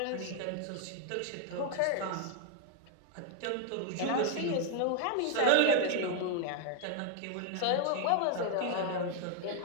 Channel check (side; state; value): both; different; correlation 0.00